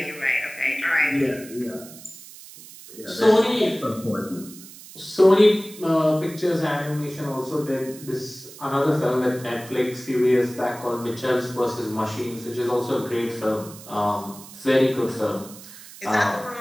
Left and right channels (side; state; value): right; noise; hiss, 17 dB below the sound